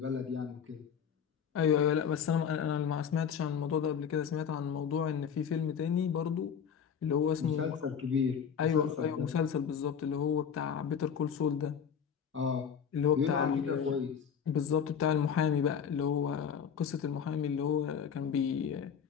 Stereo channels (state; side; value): quieter; right; 7.5 dB